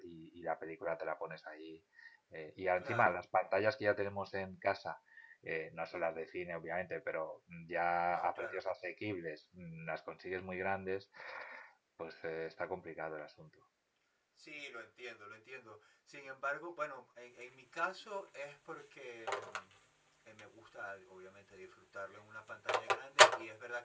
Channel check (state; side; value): identical; both; correlation 1.00